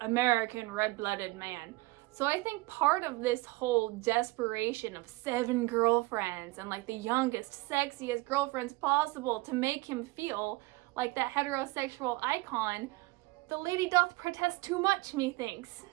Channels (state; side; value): quieter; left; 22.4 dB